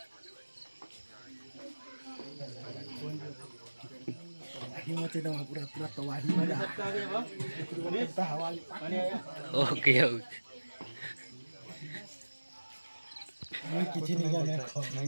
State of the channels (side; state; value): both; inverted; correlation -1.00